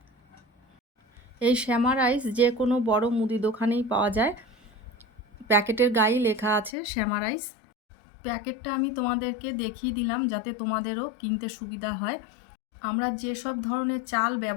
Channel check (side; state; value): right; drops out; at 6.7 s